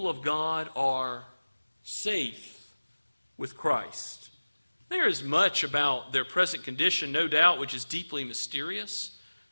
of God are safe with Christ. There is much about their present condition, no doubt, which is deeply mysterious.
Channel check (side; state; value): both; inverted; correlation -1.00